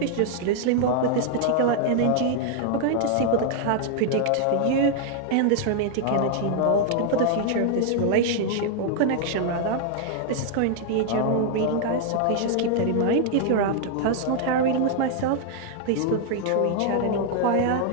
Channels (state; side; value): different; both; correlation 0.00